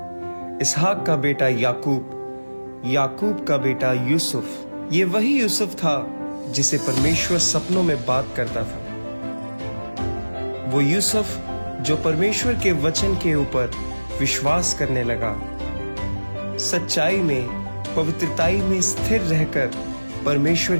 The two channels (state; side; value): inverted; both; correlation -1.00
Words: इसहाक का बेटा याकूब, याकूब का बेटा यूसुफ। ये वही यूसुफ था जिसे परमेश्वर सपनों में बात करता था। वो यूसुफ जो परमेश्वर के वचन के ऊपर विश्वास करने लगा, सच्चाई में, पवित्रताई में स्थिर रहकर परमेश्वर